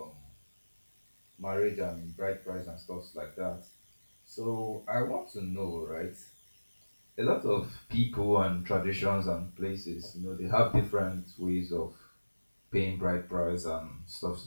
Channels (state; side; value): inverted; both; correlation -1.00